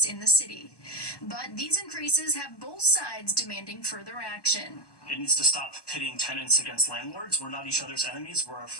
in the city. But these increases have both sides demanding further action. It needs to stop pitting tenants against landlords. We're not each other's enemies. We're our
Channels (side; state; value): right; late; 1.2 ms